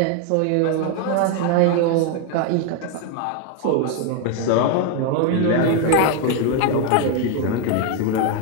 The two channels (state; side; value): different; both; correlation 0.01